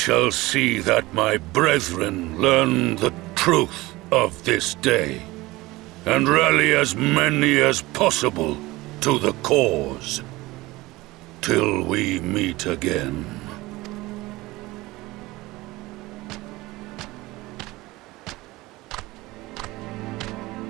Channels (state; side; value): quieter; left; 20.0 dB